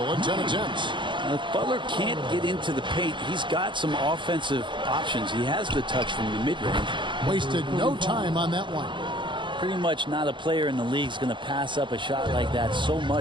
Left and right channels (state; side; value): late; left; 0.23 ms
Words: in 10 attempts. If Butler can't get into the paint, he's got some offensive options. He has the touch from the mid-range. Wasted no time on that one. Pretty much not a player in the league is going to pass up a shot like that so